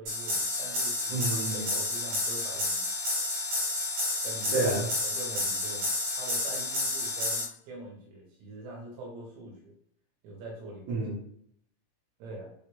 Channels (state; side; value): late; left; 17 ms